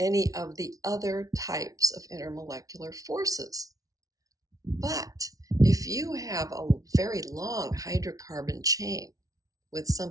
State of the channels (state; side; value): late; left; 0.17 ms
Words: of the other types of intermolecular forces. But if you have a very long hydrocarbon chain with